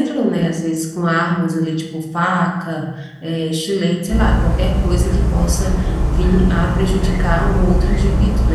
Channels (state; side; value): identical; both; correlation 1.00